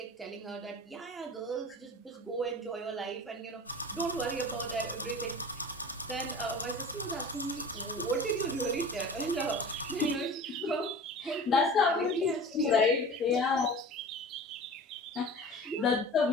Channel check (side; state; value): both; normal; correlation 0.38